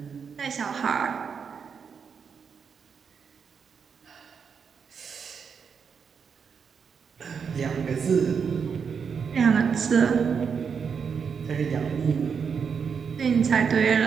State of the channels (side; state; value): left; quieter; 6.4 dB